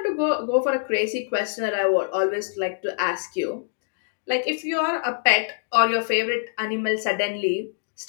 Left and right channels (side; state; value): right; silent; digital silence